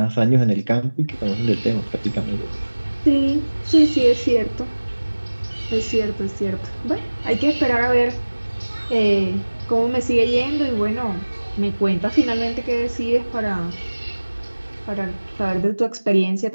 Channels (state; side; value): inverted; both; correlation -1.00